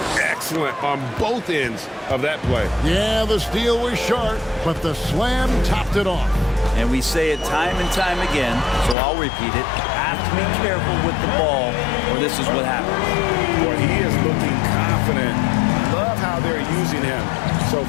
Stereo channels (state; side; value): drops out; right; at 9.0 s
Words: Excellent on both ends of that play. Yeah, the steal was sharp, but the slam topped it off. And we say it time and time again, so I'll repeat it. Have to be careful with the ball, or this is what happens. Boy, he is looking confident. Love how they're using him so